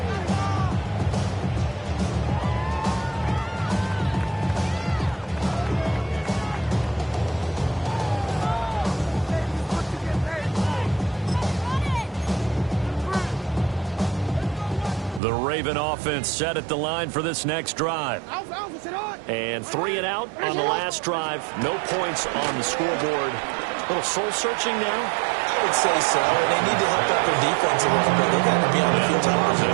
The Raven offense set at the line for this next drive. And 3 and out on the last drive. No points on the scoreboard. A little soul-searching now. I would say so. They need to help out their defense a little bit. They got to be on the field a lot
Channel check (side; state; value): left; drops out; at 15.2 s